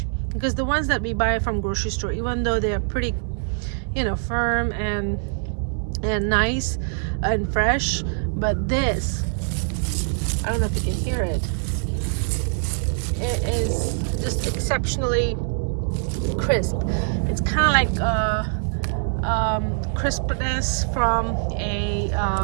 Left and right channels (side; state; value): left; silent; digital silence